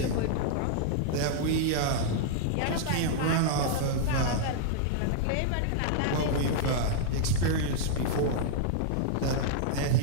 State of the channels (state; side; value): different; both; correlation -0.01